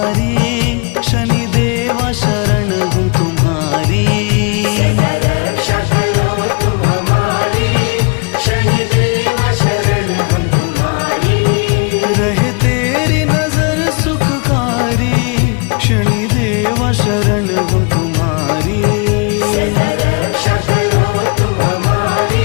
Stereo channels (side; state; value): right; quieter; 33.1 dB